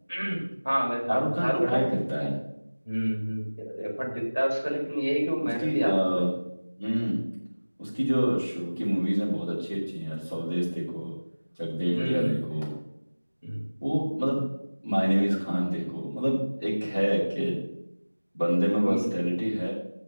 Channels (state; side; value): inverted; both; correlation -1.00